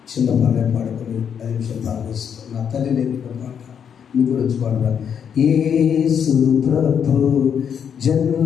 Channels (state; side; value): quieter; right; 7.8 dB